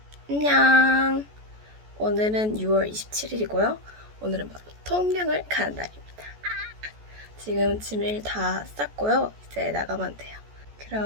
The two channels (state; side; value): late; left; 14 ms